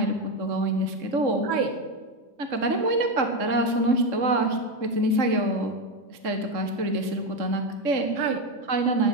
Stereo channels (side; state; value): left; late; 3.7 ms